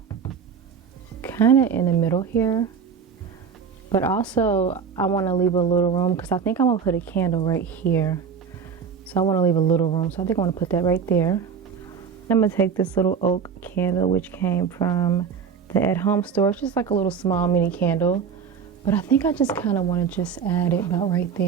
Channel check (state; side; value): quieter; left; 6.4 dB